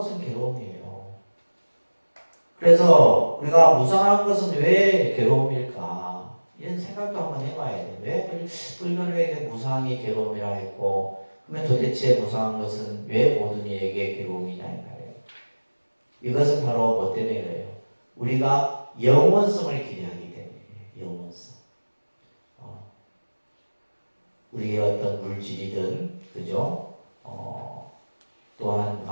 괴로움이에요. 그래서 우리가 무상한 것은 왜 괴로움일까? 이런 생각도 한번 해봐야 돼. 왜 불교에게 무상이 괴로움이라 했고, 그러면 도대체 무상한 것은 왜 모든 이에게 괴로움이냐 이 말이에요. 이것은 바로 뭐 때문에 그래요? 우리가 영원성을 기대하기 때문에 영원성. 우리의 어떤 물질이든, 그죠? 또한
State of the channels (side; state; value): both; inverted; correlation -1.00